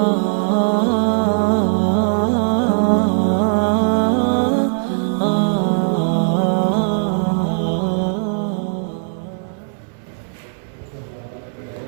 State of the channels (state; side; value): silent; left; 67 dB below the other